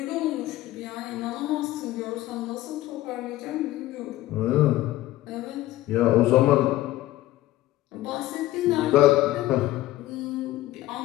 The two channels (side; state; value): right; quieter; 15.9 dB